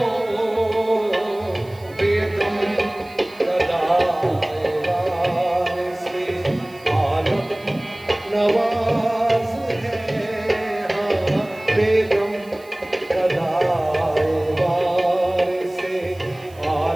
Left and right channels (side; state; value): right; noise; hiss, 27 dB below the sound